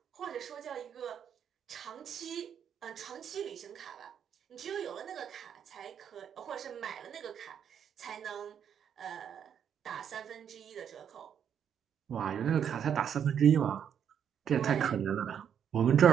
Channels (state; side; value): quieter; left; 8.4 dB